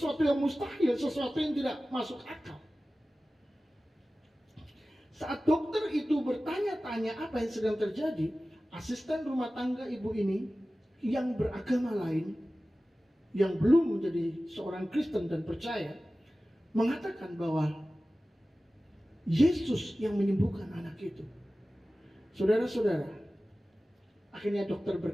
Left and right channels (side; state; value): both; normal; correlation 0.96